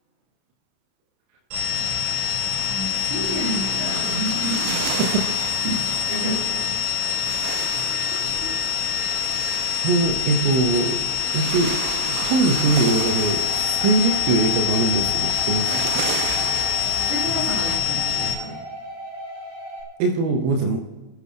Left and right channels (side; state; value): left; late; 31 ms